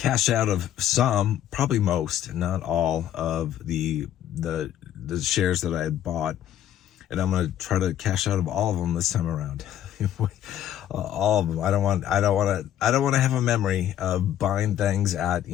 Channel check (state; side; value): quieter; right; 11.2 dB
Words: out of some, probably most, not all of the shares that I had bought. And I'm going to try to cash out of all of them this time around. All of them. I don't want to have a memory of buying things at,